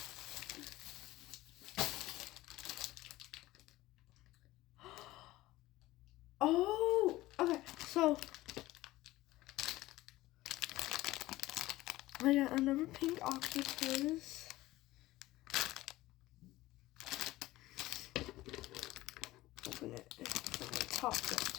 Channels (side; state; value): right; quieter; 17.5 dB